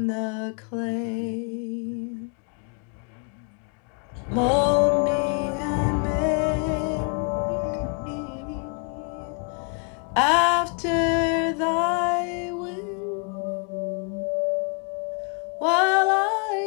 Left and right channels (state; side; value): quieter; right; 37.9 dB